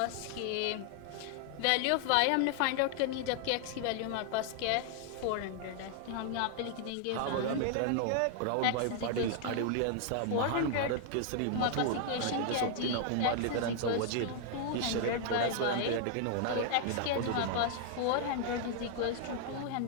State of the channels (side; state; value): both; different; correlation 0.00